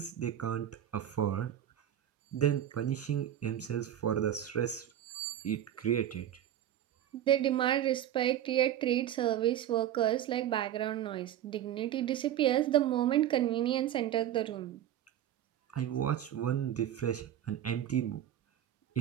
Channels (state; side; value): quieter; left; 11.2 dB